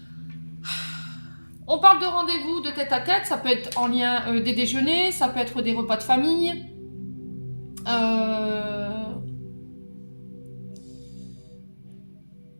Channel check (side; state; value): both; inverted; correlation -1.00